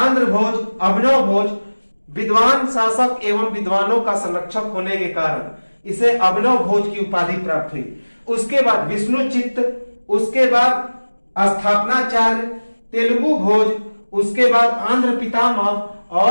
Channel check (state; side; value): inverted; both; correlation -1.00